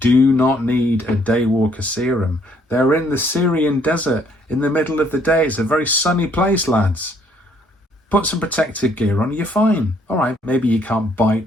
not need a daywalker serum. They're in the Syrian desert in the middle of the day. It's a very sunny place, lads. Put some protective gear on, you're fine. All right, maybe you can't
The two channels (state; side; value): normal; both; correlation 0.66